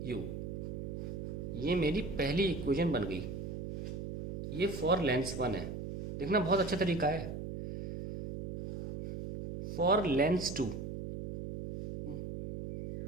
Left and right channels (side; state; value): right; noise; hum, 6 dB below the sound